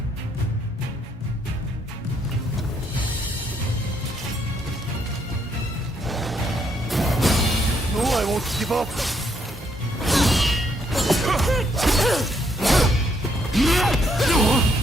No, I won't give up.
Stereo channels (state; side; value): normal; both; correlation 0.73